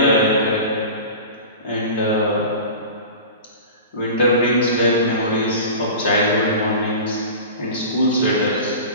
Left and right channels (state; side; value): inverted; both; correlation -0.34